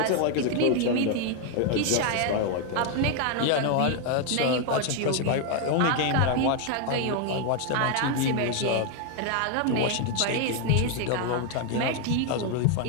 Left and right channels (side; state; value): both; different; correlation 0.01